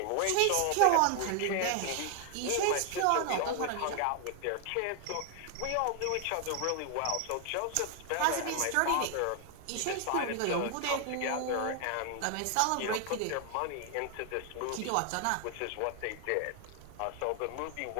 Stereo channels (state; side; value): different; both; correlation 0.00